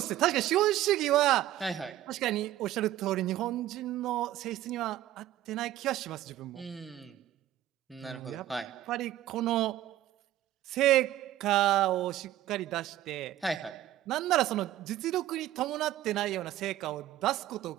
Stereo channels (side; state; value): left; quieter; 13.5 dB